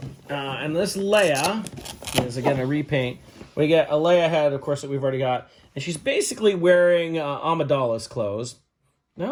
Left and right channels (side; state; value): both; identical; correlation 1.00